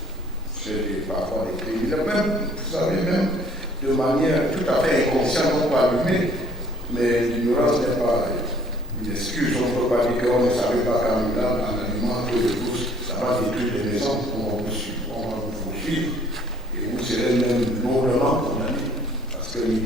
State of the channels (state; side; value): normal; both; correlation 0.58